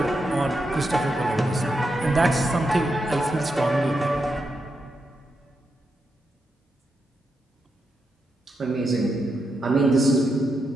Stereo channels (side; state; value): both; normal; correlation 0.85